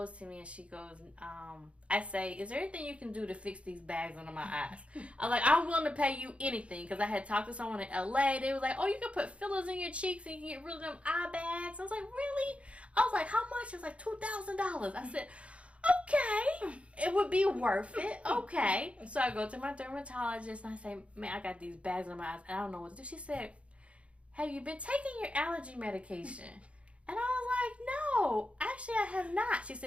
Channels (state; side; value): late; left; 0.062 ms